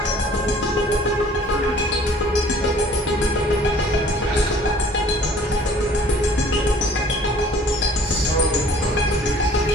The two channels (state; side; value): normal; both; correlation 0.53